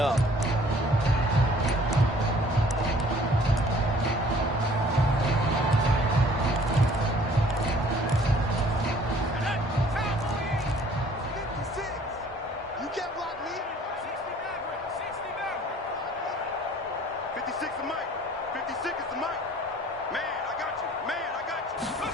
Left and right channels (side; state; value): both; normal; correlation 0.55